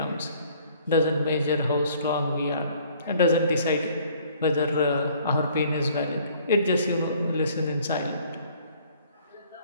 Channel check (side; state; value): both; inverted; correlation -0.58